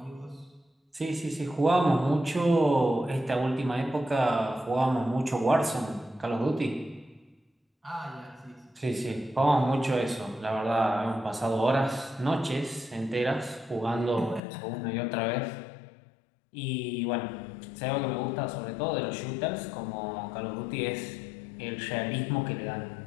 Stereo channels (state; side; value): drops out; right; at 14.4 s